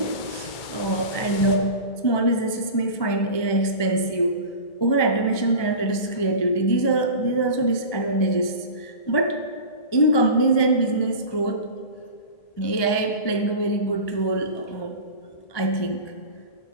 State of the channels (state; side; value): late; right; 1.2 ms